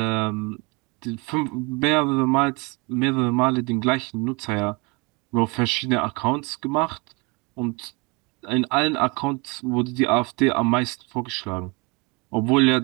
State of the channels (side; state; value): left; quieter; 28.7 dB